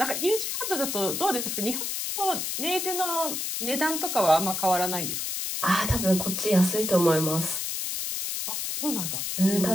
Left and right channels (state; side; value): noise; left; hiss, 2 dB below the sound